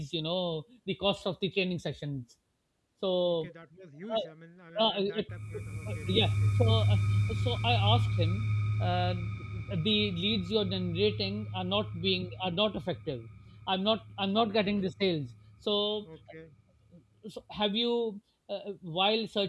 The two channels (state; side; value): identical; both; correlation 1.00